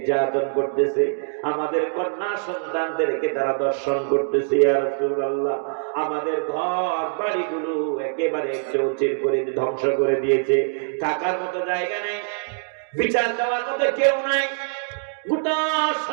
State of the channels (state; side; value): silent; left; digital silence